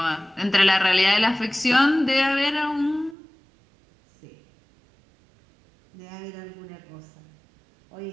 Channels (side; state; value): left; drops out; at 3.2 s